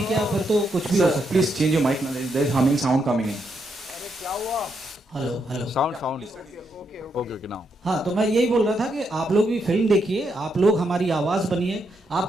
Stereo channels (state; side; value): normal; both; correlation 0.79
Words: क्या, फिर तो कुछ भी हो सकता है। Please change your mic, there is humming sound coming in. Hello sound okay now. हाँ, तो मैं यही बोल रहा था कि आप लोग भी फिल्म देखिए, आप लोग हमारी आवाज़ बनिए।